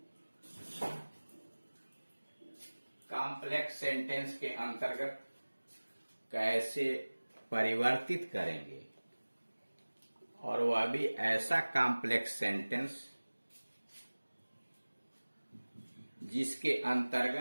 कॉम्प्लेक्स सेंटेंस के अंतर्गत कैसे परिवर्तित करेंगे और वह भी ऐसा कॉम्प्लेक्स सेंटेंस जिसके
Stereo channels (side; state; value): both; inverted; correlation -1.00